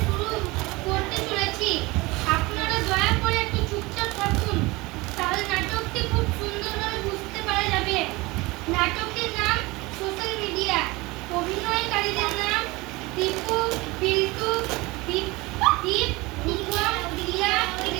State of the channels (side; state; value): left; quieter; 22.7 dB